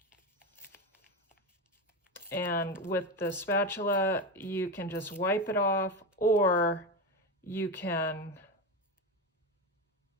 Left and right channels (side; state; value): both; normal; correlation 0.17